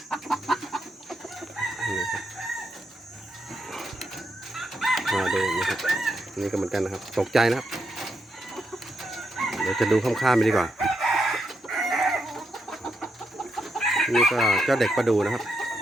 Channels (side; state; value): both; normal; correlation 0.81